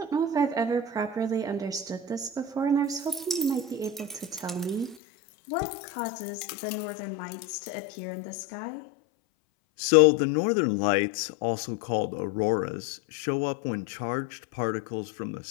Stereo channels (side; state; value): right; drops out; at 5.0 s